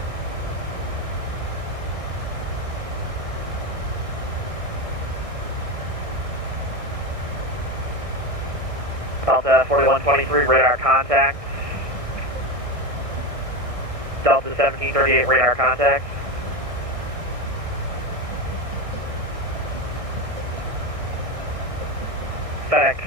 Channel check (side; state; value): left; late; 1.6 ms